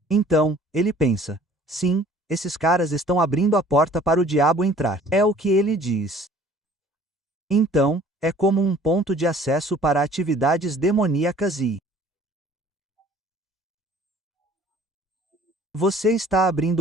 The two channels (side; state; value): both; normal; correlation 0.52